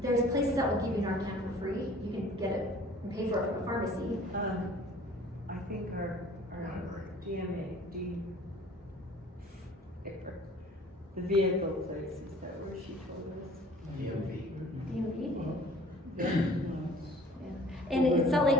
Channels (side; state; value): both; normal; correlation 0.50